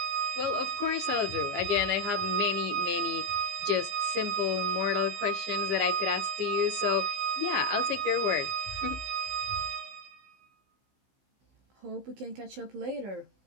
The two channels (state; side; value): late; left; 15 ms